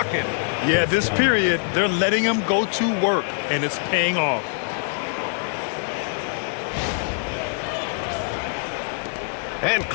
Yeah, this period, they're letting him go to work, and it's paying off. And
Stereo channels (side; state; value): right; silent; 63 dB below the other